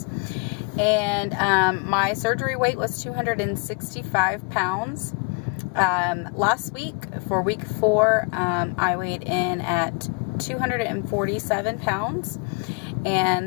And my surgery weight was 265 pounds. Last week, for week 4, I weighed in at 247 pounds.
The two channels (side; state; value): right; quieter; 35.3 dB